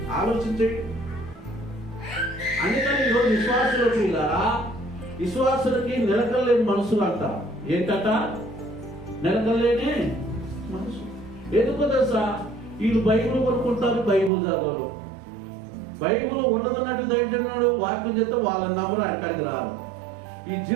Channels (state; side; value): drops out; left; at 14.3 s